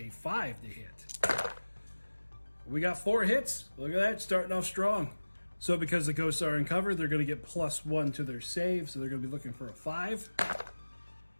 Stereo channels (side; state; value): both; inverted; correlation -1.00